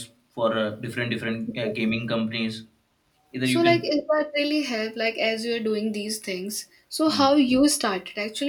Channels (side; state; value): both; identical; correlation 1.00